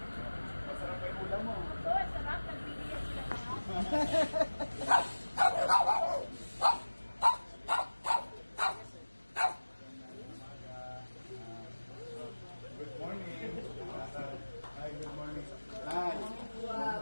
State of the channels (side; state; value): both; inverted; correlation -1.00